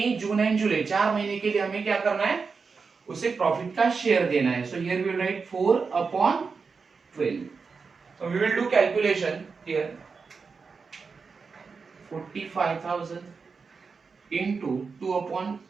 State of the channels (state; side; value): quieter; left; 5.0 dB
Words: June and July 4 महीने के लिए हमें क्या करना है? उसे प्रॉफिट का शेयर देना है. So here we will write 4/12. So we will do calculation here. 45,000 into